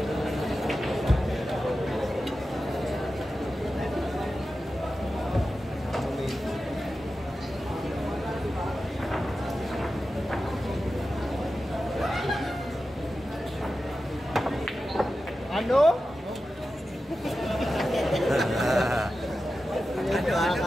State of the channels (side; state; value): both; normal; correlation 0.92